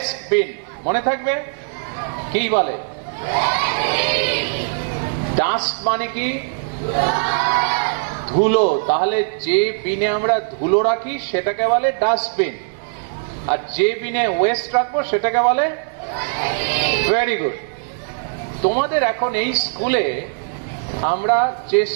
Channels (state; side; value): silent; left; 58 dB below the other